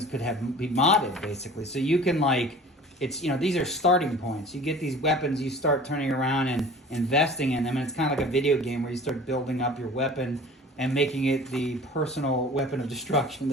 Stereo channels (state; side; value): normal; both; correlation 0.43